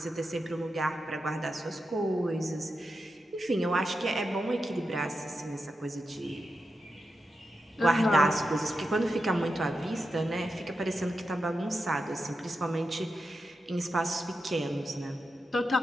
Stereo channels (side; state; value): both; normal; correlation 0.89